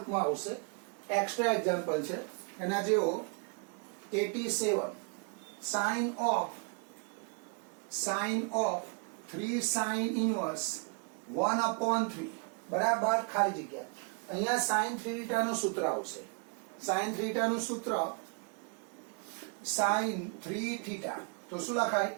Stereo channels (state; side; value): quieter; left; 35.4 dB